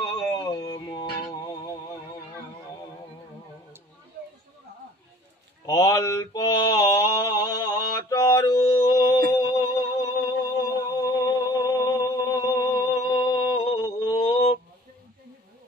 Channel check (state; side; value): normal; both; correlation 0.50